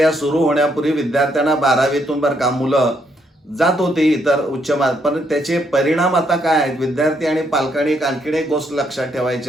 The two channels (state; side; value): normal; both; correlation 0.74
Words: सुरू होण्यापूर्वी विद्यार्थ्यांना 12वीतून बरं का मुलं जात होती इतर उच्च पण त्याचे परिणाम आता काय आहेत? विद्यार्थी आणि पालकांनी आणखीन एक गोष्ट लक्षात